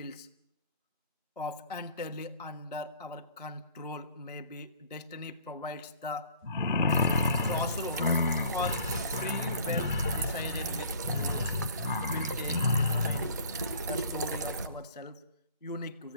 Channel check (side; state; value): both; inverted; correlation -0.50